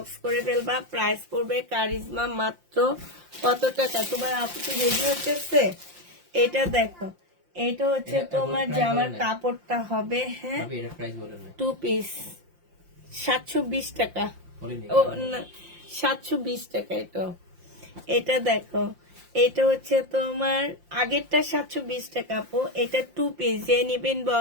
করে ফেলবা। প্রাইস পড়বে কারিজমা মাত্র কত টাকা? তোমার আপু তো রেডি হচ্ছে। এটা দেখো, এটা হচ্ছে তোমার জামার কাপড়টা হবে। হ্যাঁ, এটা প্রাইস বলেন না। 2 পিস 720 টাকা। বলিনি। ও না, 720 টাকা। এটা দেখো, এটা হচ্ছে তোমার আগেরটা 720 টাকা আপু। এটা 2 পিস, যে নিবেন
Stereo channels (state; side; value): late; left; 5.7 ms